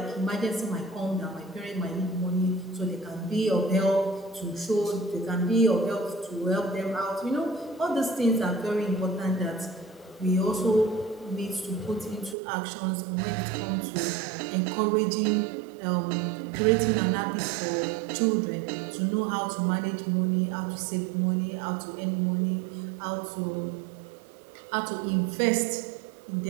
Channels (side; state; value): left; drops out; at 12.4 s